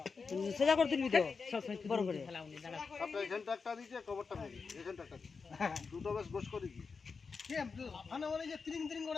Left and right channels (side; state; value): right; quieter; 5.0 dB